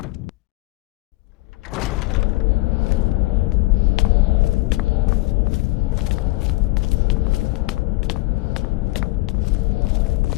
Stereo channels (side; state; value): right; quieter; 21.4 dB